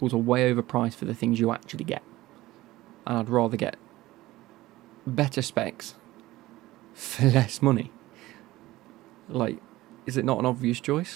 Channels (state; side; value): quieter; left; 17.5 dB